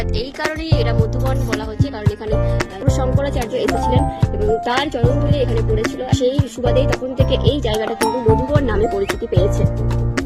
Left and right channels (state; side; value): identical; both; correlation 1.00